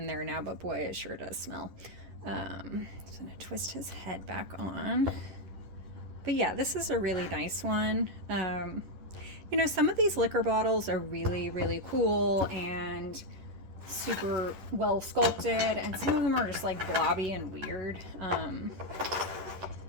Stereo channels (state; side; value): late; left; 10 ms